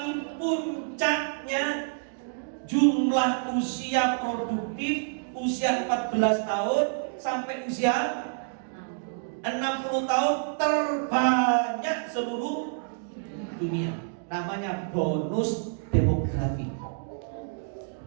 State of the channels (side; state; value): left; silent; digital silence